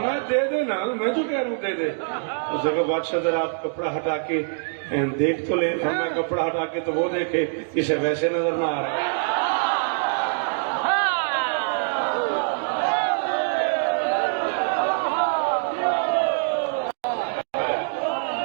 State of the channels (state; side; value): silent; left; digital silence